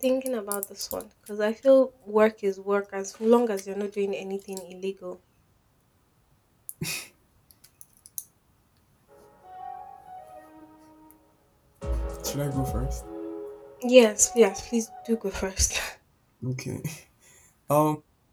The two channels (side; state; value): both; identical; correlation 1.00